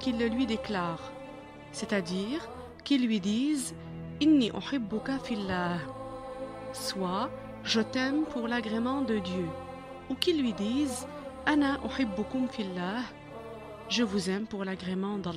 le lui déclare, c'est-à-dire qu'il lui dise « Inni uhibbuka fillah » soit « Je t'aime pour l'agrément de Dieu » ou qu'il lui dise « Ana uhibbukum fillah » je vous aime pour l'agrément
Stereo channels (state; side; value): identical; both; correlation 1.00